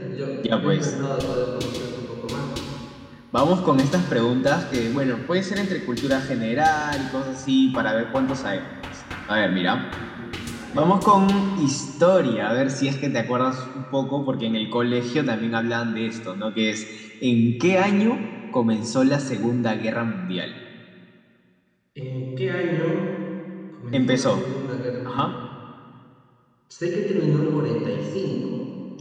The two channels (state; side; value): identical; both; correlation 1.00